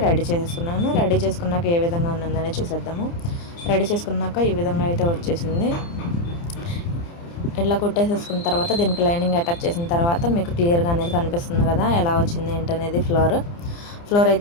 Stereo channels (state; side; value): late; right; 29 ms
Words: రెడీ చేసేసుకున్నాను. రెడీ చేసుకున్నాక ఏ విధంగా ఉన్నదని చూసేద్దాము. రెడీ చేసుకున్నాక ఈ విధంగా అయితే వచ్చేసింది. ఇట్లా కుట్టేసేసుకున్న తర్వాత దీనికి లైనింగ్ అటాచ్ చేసిన తర్వాత మీకు క్లియర్గా అనేది కనిపిస్తుంది కదా ఎలా వచ్చింది ఏంటనేది. ఫ్లోర్